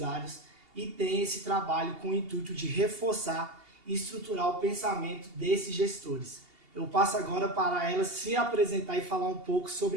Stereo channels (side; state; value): left; late; 2.8 ms